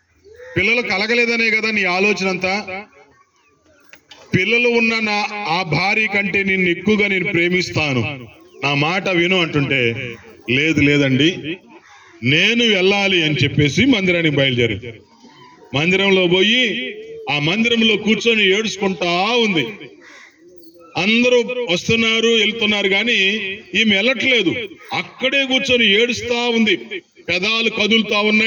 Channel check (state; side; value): identical; both; correlation 1.00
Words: పిల్లలు కలగలేదనే కదా నీ ఆలోచన అంతా. పిల్లలు ఉన్న ఆ భార్య కంటే నిన్ను ఎక్కువగా నేను ప్రేమిస్తాను, నా మాట విను అంటుంటే, లేదండి నేను వెళ్ళాలి అని చెప్పేసి మందిరానికి బయలుదేరి మందిరంలో పోయి ఆ మందిరంలో కూర్చొని ఏడుచుకుంటా ఉంది. అందరూ వస్తున్నారు వెళ్తున్నారు కానీ ఈమె వెళ్ళట్లేదు, అక్కడే కూర్చొని ఏడుస్తా ఉంది. పెదాలు కదులుతా